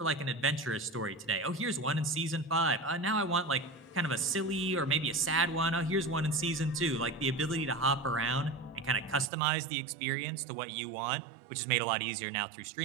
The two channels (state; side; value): drops out; left; at 9.3 s